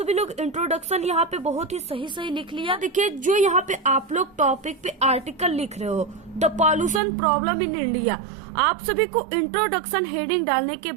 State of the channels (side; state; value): left; drops out; at 7.0 s